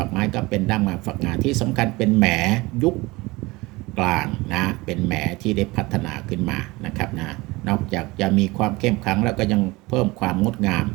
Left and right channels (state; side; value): quieter; left; 22.3 dB